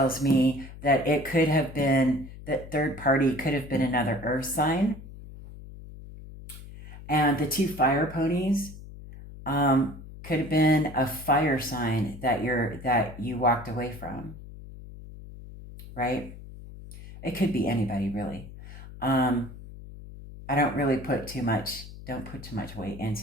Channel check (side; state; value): left; noise; hum, 15 dB below the sound